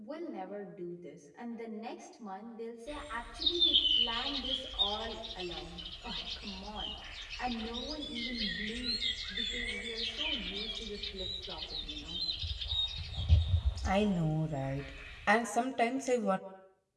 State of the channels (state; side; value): identical; both; correlation 1.00